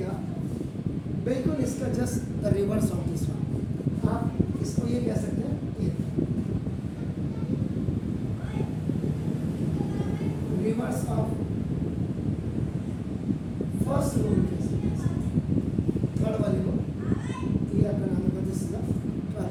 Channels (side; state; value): both; identical; correlation 1.00